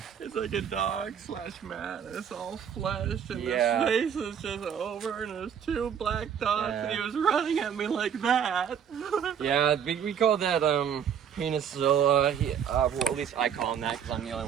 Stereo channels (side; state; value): left; quieter; 8.2 dB